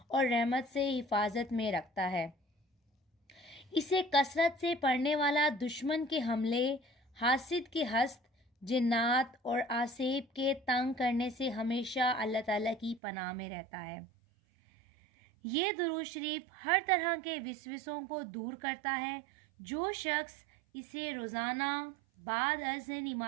और रहमत से हिफाजत में रखता है। इसे कसरत से पढ़ने वाला दुश्मन के हमले, हासिद के हस्त, जिन्नात और आसेब के तंग करने से हमेशा अल्लाह ताला की पनाह में रहता है। ये दुरूद शरीफ हर तरह के विसविसों को दूर करता है। जो शख्स इसे रोज़ाना बाद अज़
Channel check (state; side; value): drops out; left; at 13.0 s